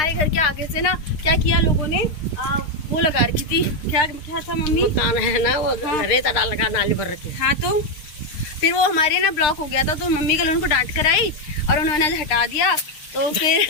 घर के आगे से ना क्या किया लोगों ने, वो लगा रखी थी, क्या था मम्मी, मकान है ना वो, रेता डाल रखा, नाली भर रखी। हाँ तो फिर वो हमारे ना ब्लॉक हो गया था, तो मम्मी कल उनको डांट कर आई और उन्होंने हटा दिया। तो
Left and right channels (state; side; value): late; right; 6.6 ms